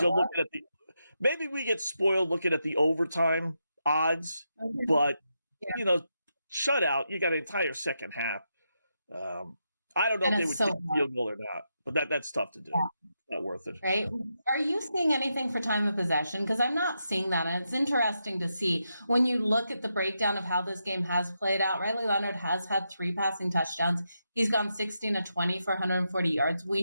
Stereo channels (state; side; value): inverted; both; correlation -0.84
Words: we get spoiled looking at the overtime odds, but shutout, you got an entire second half. I don't know if they would take a field goal or not, but that's tough to do. Yeah. Not worth it. Right. Are you seeing anything for time of possession? Because I'm not seeing that. And it's interesting to see when you look at the breakdown of how this game has played out. Riley Leonard has had 3 passing touchdowns. He's gone 16-20 for 140 yards.